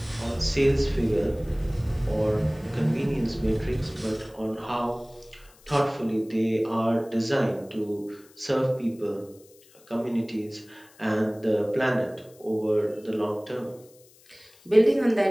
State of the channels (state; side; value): noise; left; hiss, 27 dB below the sound